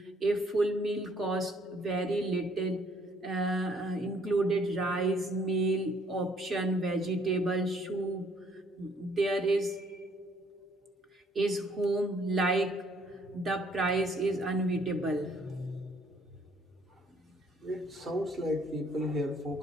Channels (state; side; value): normal; both; correlation 0.63